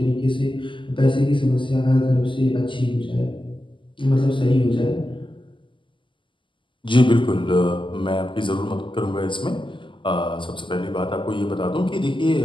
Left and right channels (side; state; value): right; late; 0.24 ms